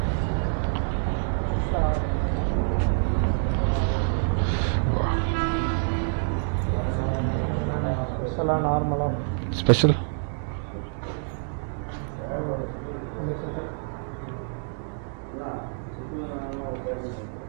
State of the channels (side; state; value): left; silent; 60 dB below the other